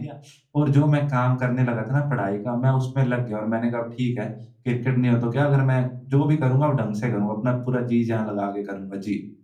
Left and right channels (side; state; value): both; identical; correlation 1.00